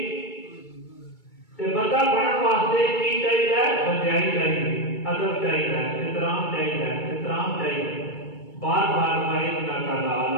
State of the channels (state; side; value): late; right; 2.3 ms